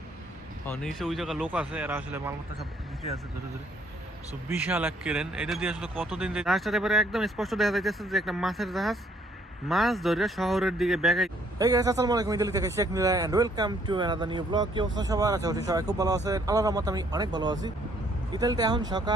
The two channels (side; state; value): both; normal; correlation 0.65